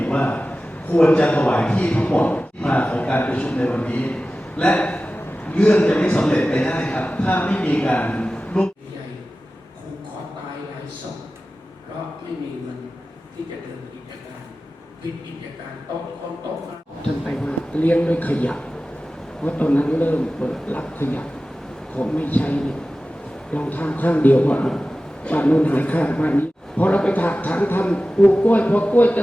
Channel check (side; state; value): both; normal; correlation 0.95